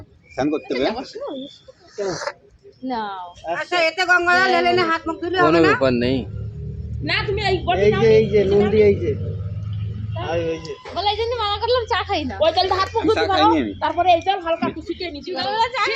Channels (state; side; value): identical; both; correlation 1.00